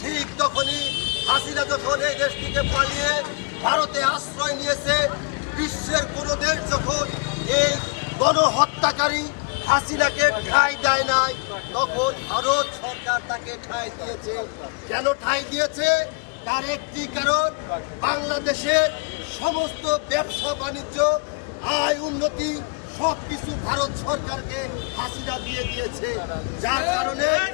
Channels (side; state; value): right; quieter; 35.4 dB